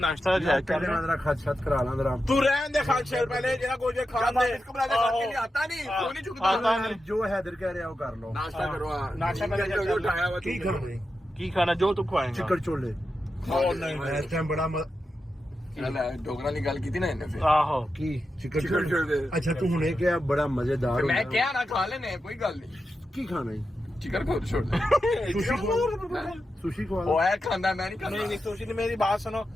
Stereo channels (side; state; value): both; normal; correlation 0.89